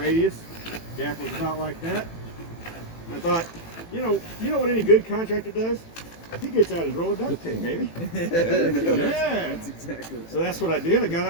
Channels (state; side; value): late; right; 18 ms